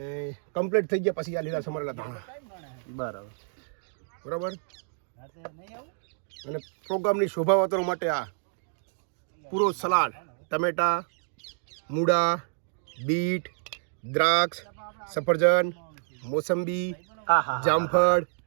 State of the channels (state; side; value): silent; left; digital silence